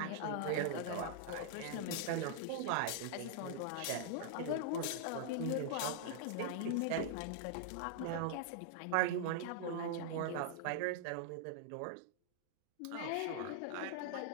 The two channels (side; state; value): both; different; correlation -0.01